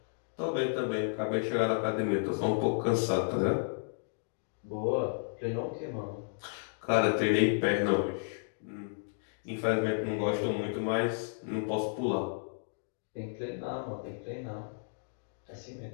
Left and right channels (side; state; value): right; silent; digital silence